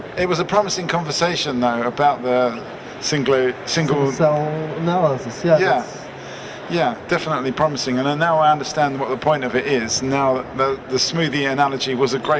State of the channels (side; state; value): both; identical; correlation 1.00